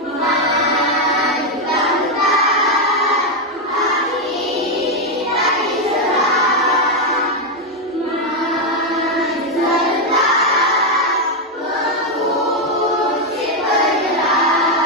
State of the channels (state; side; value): normal; both; correlation 0.04